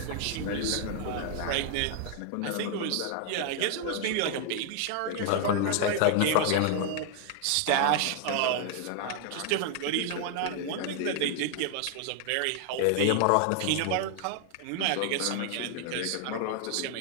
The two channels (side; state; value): both; different; correlation 0.00